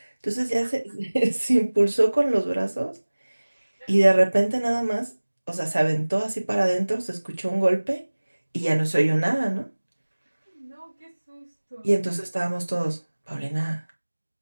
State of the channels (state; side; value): inverted; both; correlation -1.00